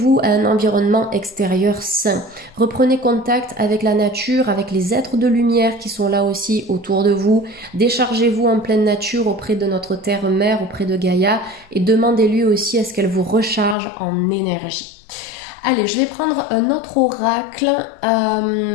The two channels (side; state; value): right; drops out; at 13.8 s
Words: à un environnement extérieur sain. Reprenez contact avec la nature, avec les êtres de lumière qui sont là aussi autour de vous. Déchargez-vous en pleine nature auprès de notre terre-mère, auprès de Gaïa, et demandez-lui aussi à ce qu'elle vous recharge en énergie. Allez, je vais prendre un autre oracle.